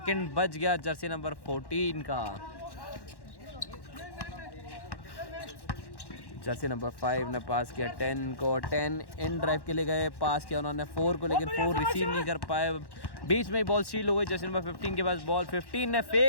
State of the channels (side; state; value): right; late; 1.1 ms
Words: बच गया जर्सी नंबर 14 का। जर्सी नंबर 5 ने पास किया 10 को, 10 इन ड्राइव के लिए गए, पास किया उन्होंने 4 को, लेकिन 4 रिसीव नहीं कर पाए, बीच में ही बॉल स्टील हो गई। जर्सी नंबर 15 के पास बॉल, 15 ने